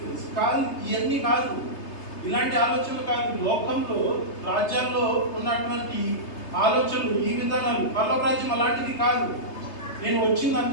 కాదు, ఇవన్నీ కాదు, ఇలాంటి ఆలోచనలు కాదు. లోకంలో రాజ్యాల్లో ఉన్నటువంటి ఆలోచనలు, ఈ విధానాలు, పరలోక రాజ్యం అలాంటిది కాదు. నేను వచ్చింది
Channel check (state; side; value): late; right; 3.3 ms